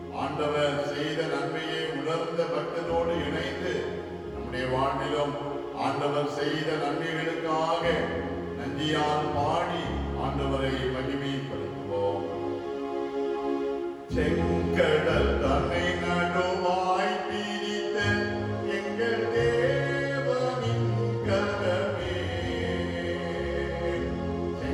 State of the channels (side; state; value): both; identical; correlation 1.00